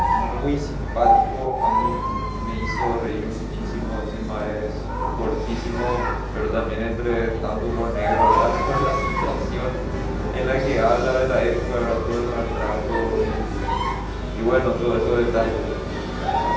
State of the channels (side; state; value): both; identical; correlation 1.00